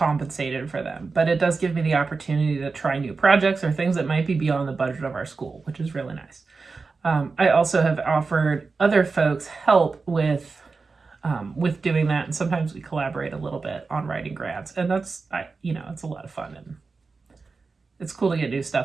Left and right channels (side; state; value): left; quieter; 4.3 dB